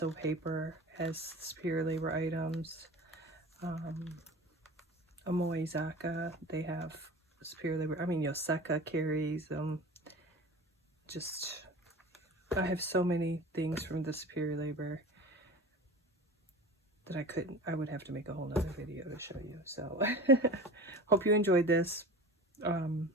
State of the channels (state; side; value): normal; both; correlation 0.35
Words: Paper has Superior Labor items. Amoizaka, they have Superior Labor. I mean, Yoseka carries them. I have so many things from the Superior Labor that I would have to make a whole nother video to show you. So hope you enjoyed this.